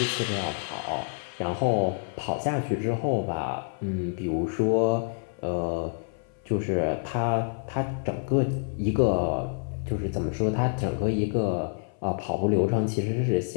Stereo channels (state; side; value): silent; right; 56 dB below the other